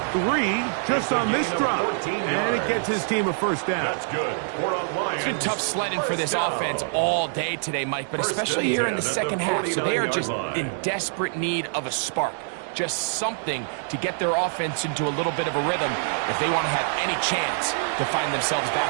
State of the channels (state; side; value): silent; left; digital silence